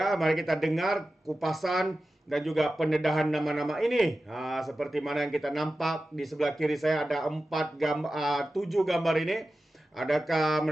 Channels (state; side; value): normal; both; correlation 0.94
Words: mari kita dengar kupasan dan juga pendedahan nama-nama ini. Seperti mana yang kita nampak di sebelah kiri saya ada 7 gambar ini. Adakah